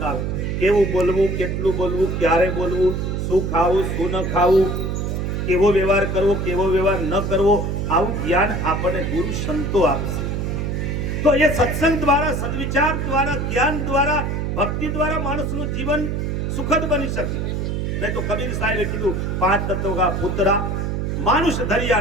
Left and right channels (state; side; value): noise; right; hum, 1 dB below the sound